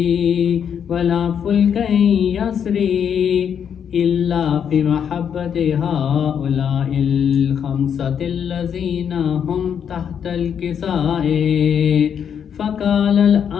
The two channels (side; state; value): right; quieter; 8.0 dB